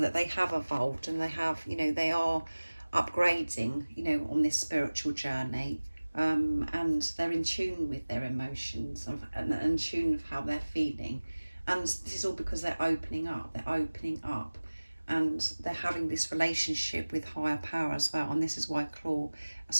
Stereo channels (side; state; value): both; inverted; correlation -1.00